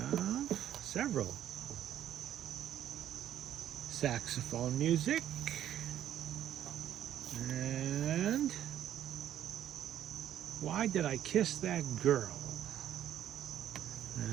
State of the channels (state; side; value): quieter; left; 11.2 dB